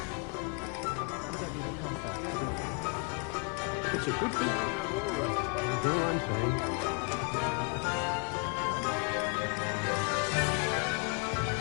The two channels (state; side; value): quieter; right; 34.8 dB